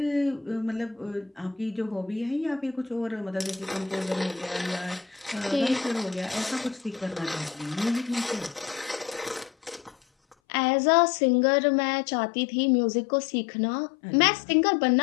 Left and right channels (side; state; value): right; drops out; at 10.4 s